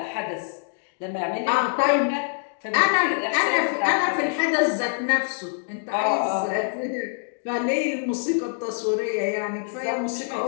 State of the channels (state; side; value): silent; right; 60 dB below the other